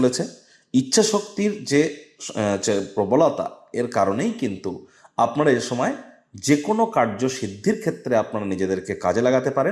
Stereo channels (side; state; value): both; identical; correlation 1.00